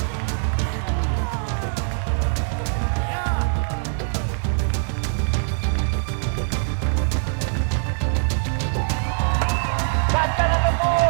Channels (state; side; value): silent; left; digital silence